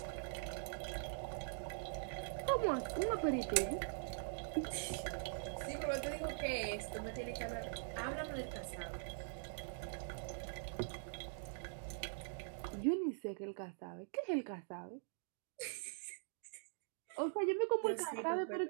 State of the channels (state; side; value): silent; left; digital silence